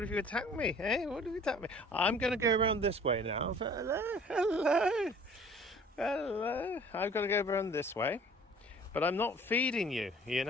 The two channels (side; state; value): both; normal; correlation 0.50